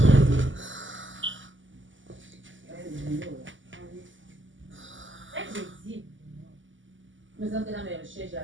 Mais dans mes recherches,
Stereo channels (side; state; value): left; late; 0.56 ms